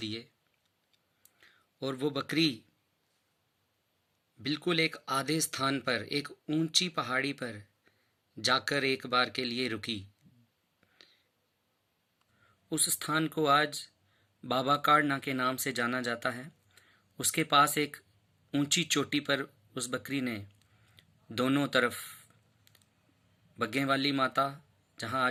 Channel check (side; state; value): both; identical; correlation 1.00